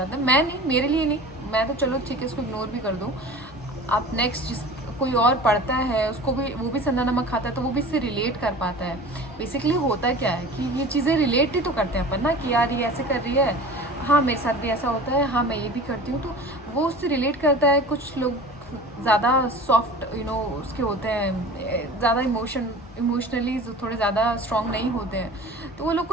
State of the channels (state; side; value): normal; both; correlation 0.39